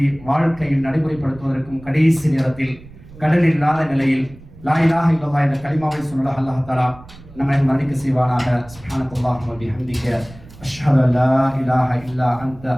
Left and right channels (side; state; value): right; noise; rumble, 20 dB below the sound